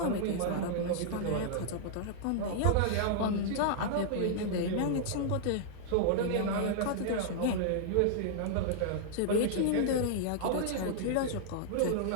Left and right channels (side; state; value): both; different; correlation -0.01